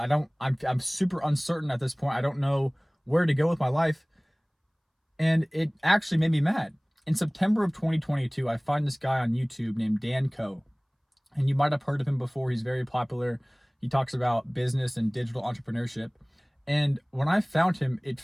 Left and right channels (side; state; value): both; identical; correlation 1.00